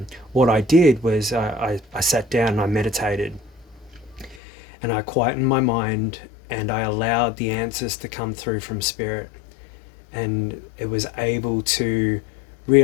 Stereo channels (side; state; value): right; drops out; at 4.4 s